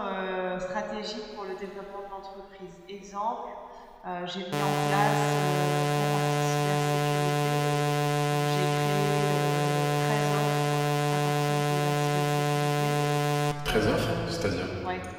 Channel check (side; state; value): both; identical; correlation 1.00